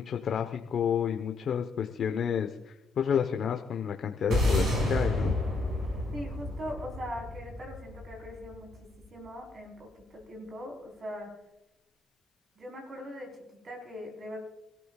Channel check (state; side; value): quieter; right; 4.0 dB